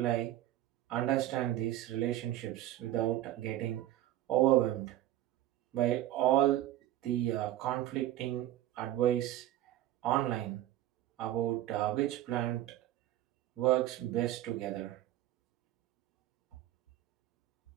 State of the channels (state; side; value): quieter; left; 13.9 dB